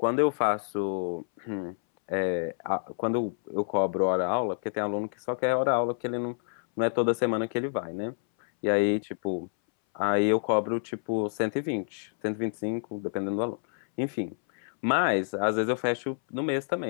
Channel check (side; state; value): right; silent; 59 dB below the other